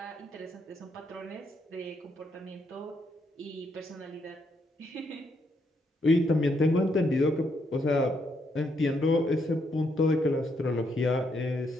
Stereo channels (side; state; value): both; normal; correlation 0.76